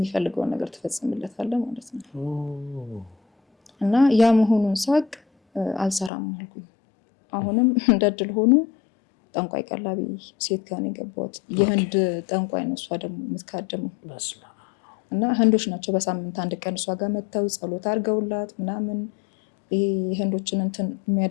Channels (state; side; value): drops out; right; at 6.1 s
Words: ነገር ትፈጽምለታለህ ማለት ነው። እና ያ መሆኑን ሳቅ አልሰራም አልኩኝ። አሁንም እንደድል ሆኖ ጠንቋይ ቀላቢ ሴት ጋር ነው የገባሁት። የህንድ ጠንቋይ ነው እሷ ደግሞ የምትካደመው እና ህንዶች ናቸው። በሳምንት አንድ ቀን እሷ ጋር መጥተው ጸሎት አድርገውላት ምናምን ይሄ የህንዶችን እንትን